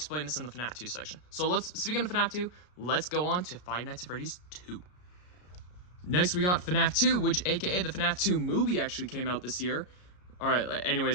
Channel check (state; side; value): late; right; 33 ms